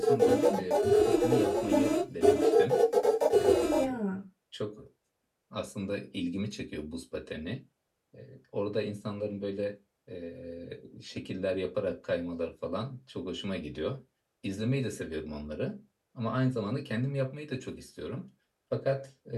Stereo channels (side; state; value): both; identical; correlation 1.00